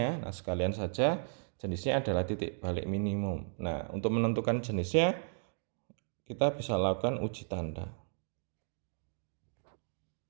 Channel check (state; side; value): silent; left; digital silence